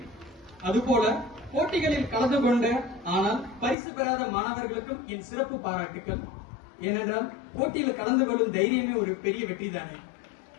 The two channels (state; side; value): drops out; right; at 3.8 s